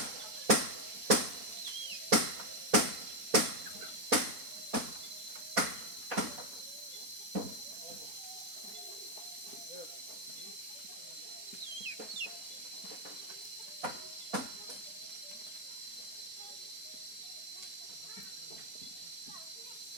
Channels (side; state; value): left; late; 4.2 ms